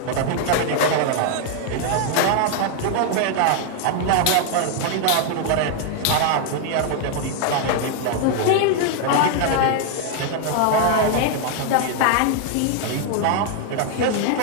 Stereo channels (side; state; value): both; different; correlation 0.00